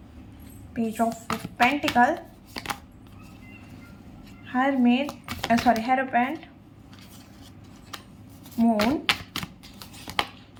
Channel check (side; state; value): both; identical; correlation 1.00